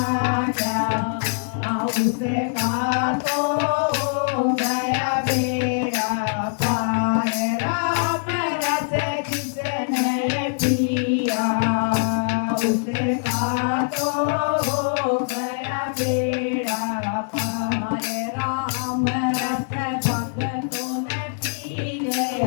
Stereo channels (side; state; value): right; silent; digital silence